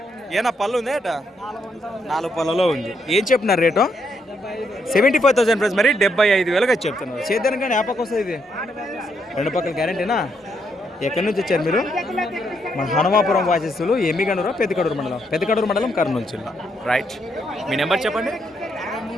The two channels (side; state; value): both; normal; correlation 0.76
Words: ఏనా పళ్ళు ఉంది అట? 4 పళ్ళలో ఉంది. ఏం చెప్తున్నారు రేటు? 75,000 ఫ్రెండ్స్. మరి 75,000గా చెప్తున్నారు. చేద్దాను కానీ యాపకు వస్తుంది. ఇది 2 పక్కల గ్యారెంటీనా? ఎక్కడి నుంచి వచ్చారు మీరు? మన హనుమాపురం వాసస్తులు, ఎమ్మిగనూరు, పెద్దకడూరు మండలం. పెద్దకడూరు మండలం, కర్నూలు జిల్లా. రైట్. మీ నెంబర్ చెప్పండి.